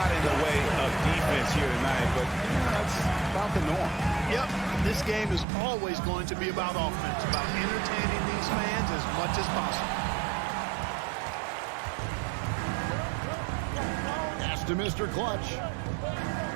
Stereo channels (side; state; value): left; drops out; at 5.5 s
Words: in the way of defense here tonight, but that's about the norm. Yep, this game is always going to be about offense, about entertaining these fans as much as possible. Pass to Mr. Clutch.